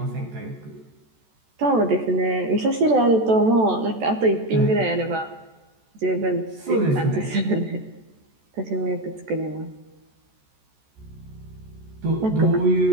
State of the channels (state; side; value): late; left; 14 ms